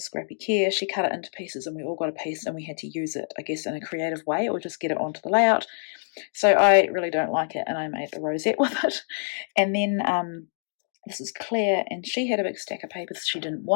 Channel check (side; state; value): right; silent; digital silence